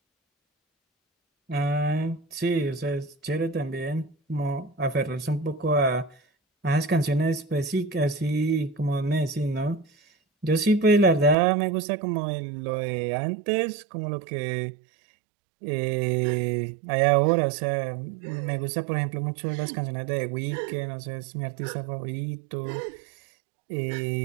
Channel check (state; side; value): drops out; left; at 11.4 s